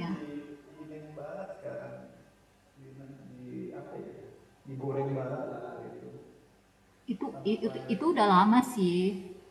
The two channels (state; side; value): identical; both; correlation 1.00